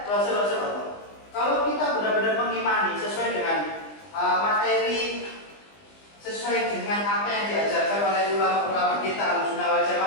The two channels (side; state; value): right; late; 20 ms